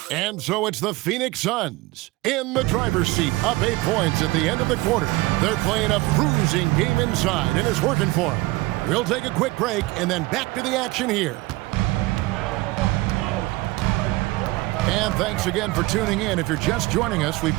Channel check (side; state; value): left; quieter; 21.0 dB